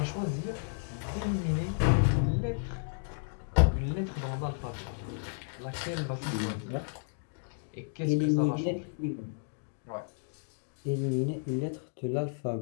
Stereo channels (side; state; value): right; silent; digital silence